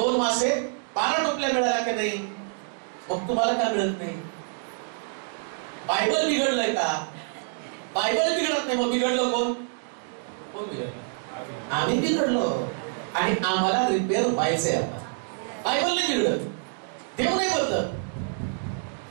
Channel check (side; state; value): left; silent; 60 dB below the other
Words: मासे 12 टोपल्या मिळाल्या का नाही? मग तुम्हाला काय मिळत नाही? बायबल बिघडलंय का? बायबल बिघडत नाही. मग बिघडलं कोण? कोण बिघडलं? आम्ही बिघडलो आणि आम्हाला रिपेअर व्हायचंय. आता बायबल नाही बिघडत, देव नाही बदलत.